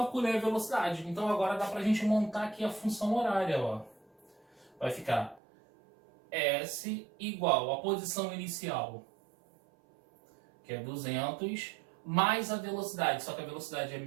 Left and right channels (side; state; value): left; drops out; at 5.4 s